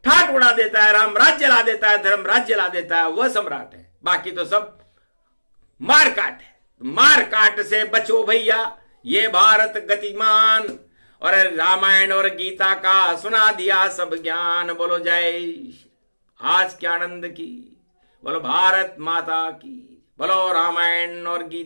ठाट उड़ा देता है, राम राज्य ला देता है, धर्म राज्य ला देता है, वह सम्राट है। बाकी तो सब मारकाट है। मारकाट से बचो भैया, ये भारत गतिमान, और रामायण और गीता का सुना दिया सब ज्ञान। बोलो जय आज के आनंद की, बोलो भारत माता की, बोलो रामायण और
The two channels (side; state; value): both; inverted; correlation -1.00